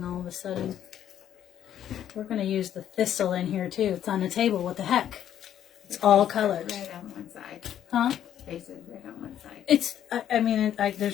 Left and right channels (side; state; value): right; quieter; 10.4 dB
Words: all of a sudden? We're going to use the thistle in here too. It's on the table. What the heck? It's all colors. Red on one side. Huh? Faces red on one side. It's, I mean,